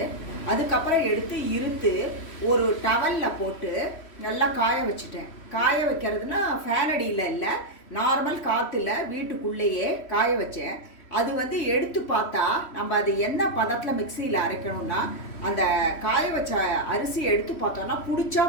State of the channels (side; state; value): right; late; 3.1 ms